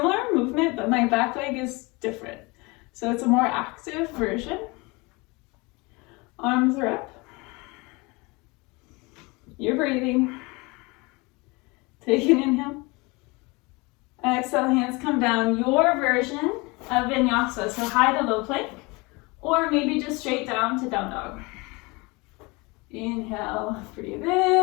movement, but my back leg is different. So it's a more active version. Arms are up. You're breathing. Take an inhale. Exhale, hands come down. Your version of vinyasa, so high to low plank, or maybe just straight down to down dog. Inhale, breathe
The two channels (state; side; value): quieter; right; 25.9 dB